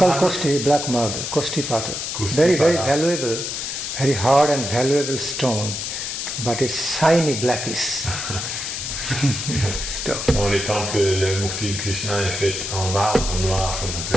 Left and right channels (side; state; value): left; noise; hiss, 4 dB below the sound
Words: black marble, Kostipata. Very, very valuable, very hard and valuable stone, but it's shiny blackish. Dans les temples, le Murti de Krishna est fait en marbre noir qu'on